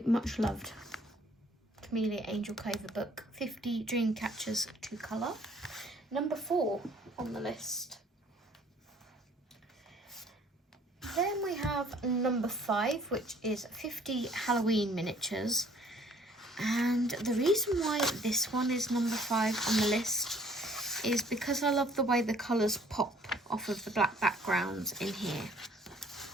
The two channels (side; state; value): both; normal; correlation 0.58